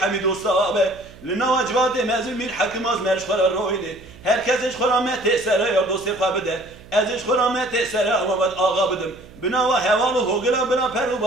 دوستا به لنا وجبات مزل میر حکم از مرش خورا رویده هر کسش خورا مت سره یا دوستی خوابده ازش خورا مت سره آمد آقا بدم بنا و حوال و هوگلا بنا پر و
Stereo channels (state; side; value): noise; right; hum, 21 dB below the sound